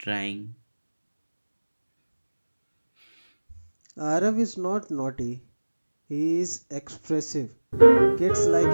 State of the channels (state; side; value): inverted; both; correlation -1.00